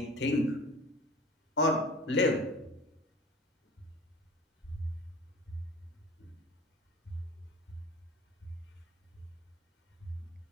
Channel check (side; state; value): both; normal; correlation 0.41